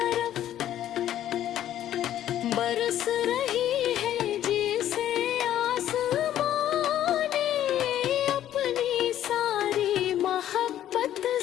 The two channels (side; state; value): right; quieter; 11.8 dB